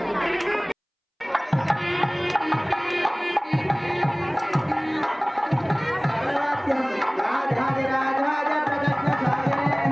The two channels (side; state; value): both; identical; correlation 1.00